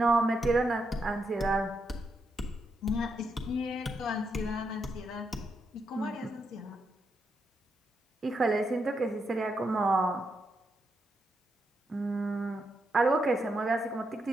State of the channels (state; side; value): normal; both; correlation 0.82